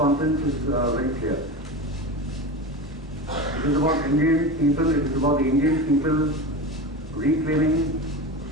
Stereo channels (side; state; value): both; normal; correlation 0.25